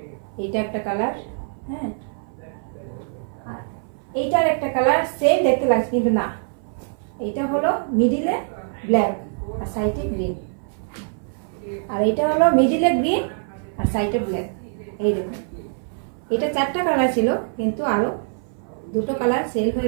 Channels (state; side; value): silent; left; 58 dB below the other